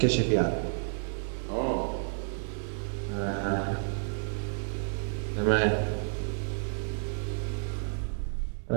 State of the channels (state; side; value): silent; left; 57 dB below the other